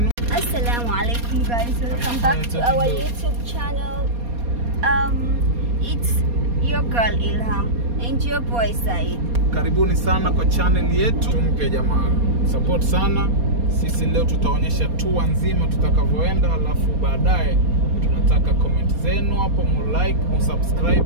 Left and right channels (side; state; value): left; late; 4.2 ms